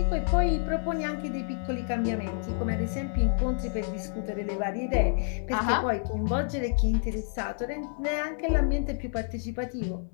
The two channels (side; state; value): right; silent; 59 dB below the other